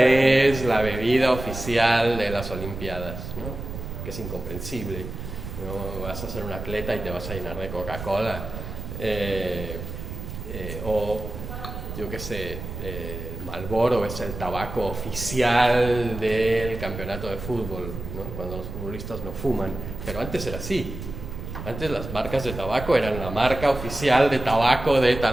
la bebida oficial de las Olimpiadas, ¿no? Que es incomprensible, ¿no? Vas a ser un atleta y te vas a llenar de Coca-Cola, o yo qué sé, Marlboro es el tabaco oficial del campeonato de fútbol, ¿no? Cuando los futbolistas no fuman, pero antes era así. Antes las marcas de tabaco eran la marca oficial de tabaco de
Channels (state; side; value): noise; right; rumble, 8 dB below the sound